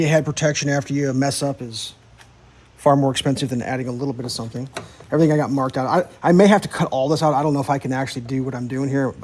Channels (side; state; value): both; identical; correlation 1.00